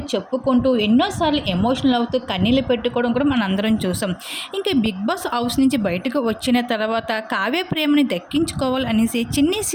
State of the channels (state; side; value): identical; both; correlation 1.00